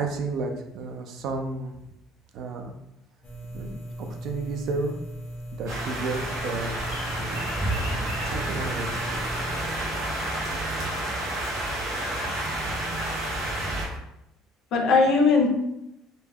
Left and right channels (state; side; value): normal; both; correlation 0.53